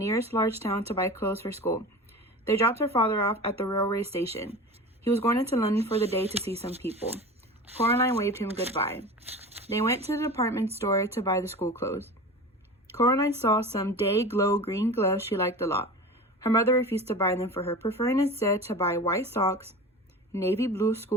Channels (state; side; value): normal; both; correlation 0.33